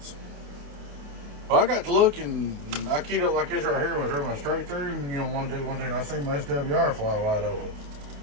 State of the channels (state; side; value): late; left; 28 ms